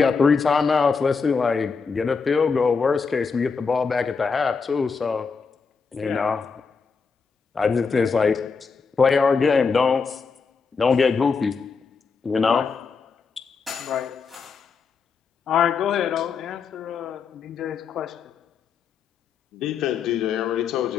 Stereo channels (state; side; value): quieter; right; 5.3 dB